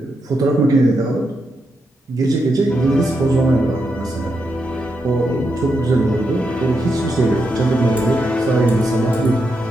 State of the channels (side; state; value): both; normal; correlation 0.84